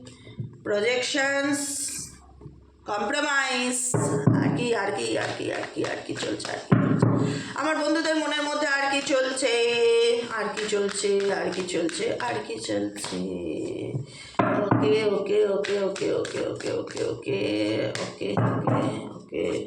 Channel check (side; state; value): both; identical; correlation 1.00